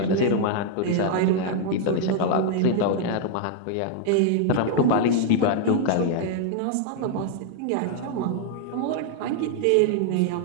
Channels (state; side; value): different; both; correlation 0.00